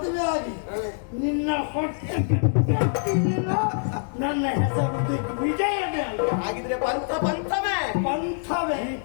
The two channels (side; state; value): right; silent; digital silence